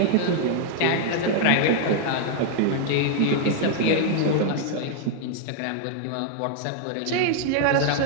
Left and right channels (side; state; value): both; different; correlation 0.00